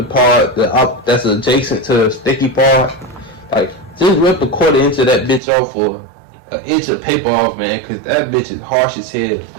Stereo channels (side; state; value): left; drops out; at 5.4 s